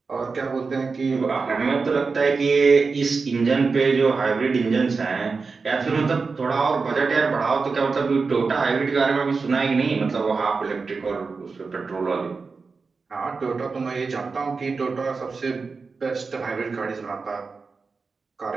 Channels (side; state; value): left; quieter; 4.5 dB